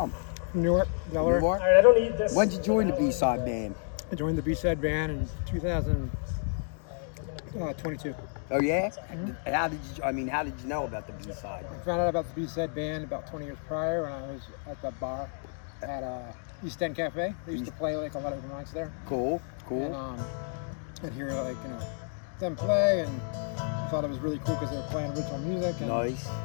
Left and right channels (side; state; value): right; silent; 58 dB below the other